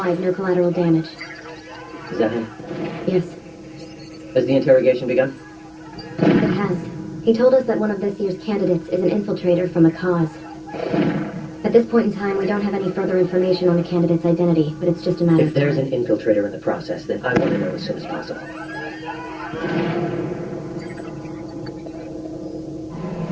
no collateral damage. Is that him? Yes, Has the interrogation begun? it has. He told us that one of this year's candidates is an infiltrator from a cause. At this point in time, we don't have any further information on the candidate's identity, but it's just a matter If of there's time. an infiltrator in the process, then I want to know as soon as possible.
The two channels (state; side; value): identical; both; correlation 1.00